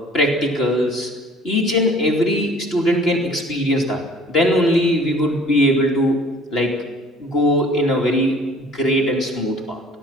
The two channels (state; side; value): normal; both; correlation 0.52